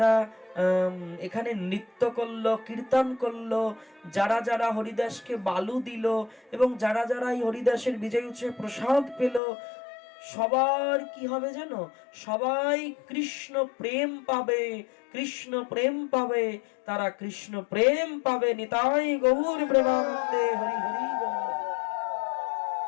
এখানে নৃত্য করলো, কীর্তন করলো, যারা যারা হরিদাসকে বালু দিল, এবং যারা যারা এই হরিদাসের বিজয় উৎসবে প্রসাদ পেল, সবার কি হবে জানো, সবাই কৃষ্ণ প্রেম পাবে, কৃষ্ণ প্রেম পাবে, তারা কৃষ্ণ প্রেম পাবে। নিতাই গৌর প্রেমানন্দে হরি হরি বল।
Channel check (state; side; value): drops out; right; at 9.4 s